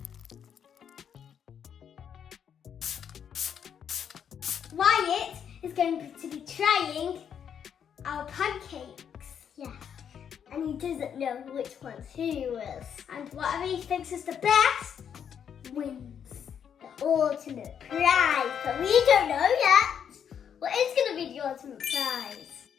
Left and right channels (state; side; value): quieter; right; 8.2 dB